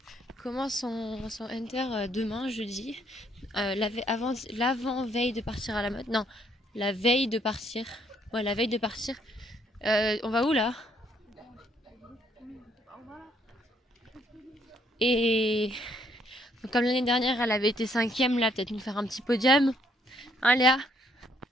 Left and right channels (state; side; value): normal; both; correlation 0.69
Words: commence son Hunter demain, jeudi. L'avant-veille de partir à la mode. Non, la veille de partir. Ouais, la veille de partir. On va où là? Et donc, comme l'année dernière, elle avait été 5e, là, peut-être nous faire un petit podium. Hein, Léa?